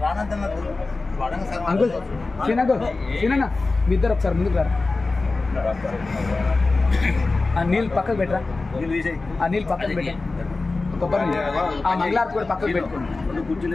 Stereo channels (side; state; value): right; quieter; 3.5 dB